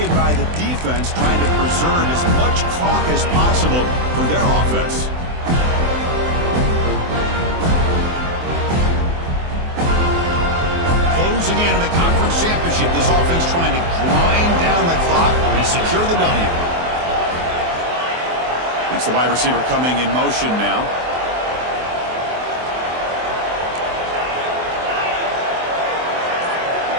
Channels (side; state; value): left; late; 24 ms